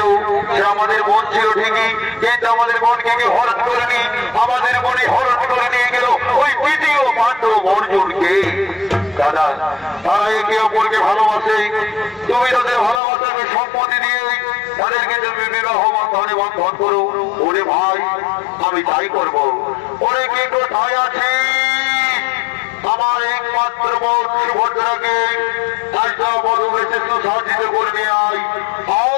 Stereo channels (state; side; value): drops out; right; at 13.0 s